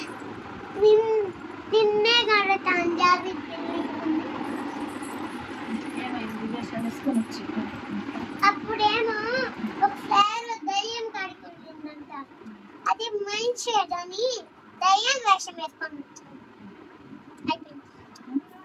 నిన్నే కడతాను జాబి అప్పుడేమో ఒక ఫ్లవర్ దయ్యం కడుకుంటుందంట. అది మైండ్ షేడ్ అని దయ్యం వేషం వేసుకొని అయిపోయింది.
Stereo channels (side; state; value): both; identical; correlation 1.00